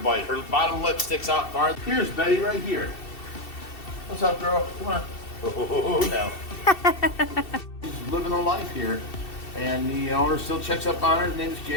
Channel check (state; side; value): late; right; 2.7 ms